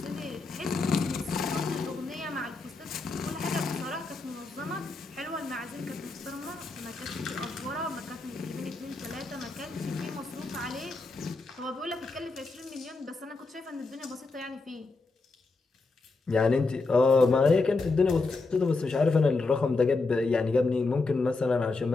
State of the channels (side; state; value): right; quieter; 3.7 dB